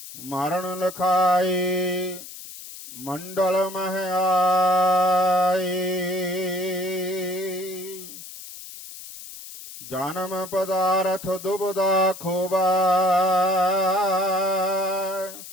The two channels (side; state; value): left; noise; hiss, 14 dB below the sound